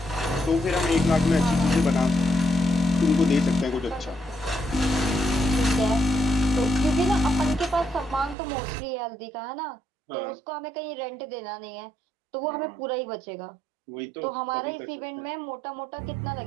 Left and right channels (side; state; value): left; drops out; at 8.3 s